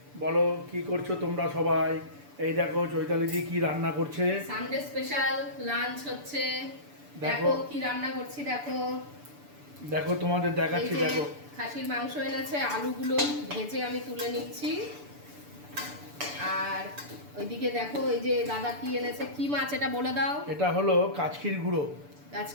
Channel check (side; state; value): left; late; 6.9 ms